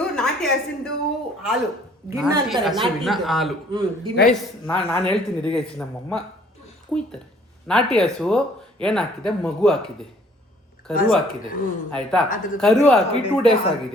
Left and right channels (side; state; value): both; normal; correlation 0.58